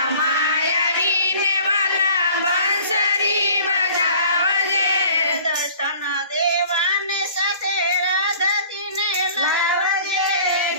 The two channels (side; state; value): both; inverted; correlation -0.49